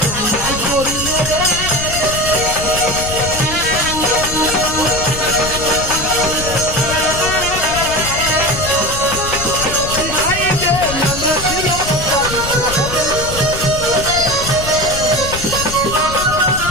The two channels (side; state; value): left; noise; rumble, 8 dB below the sound